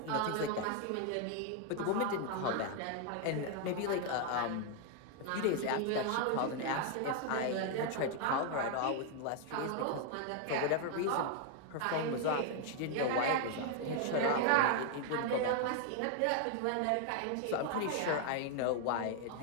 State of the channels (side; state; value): both; different; correlation 0.00